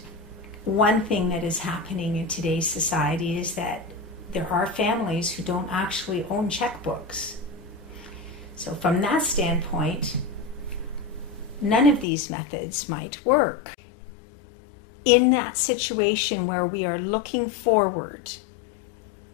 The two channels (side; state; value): right; drops out; at 12.1 s